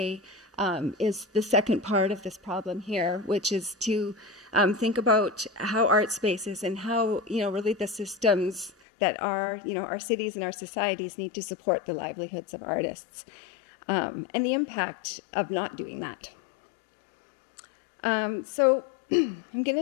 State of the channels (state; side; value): drops out; right; at 8.7 s